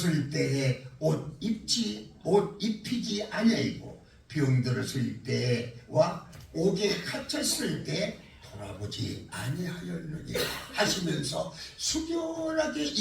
때에 옷 입히지 아니하였고 병들었을 때와 옥에 갇혔을 때 돌아보지 아니하였느니 하시면서 숙연하게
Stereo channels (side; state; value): both; identical; correlation 1.00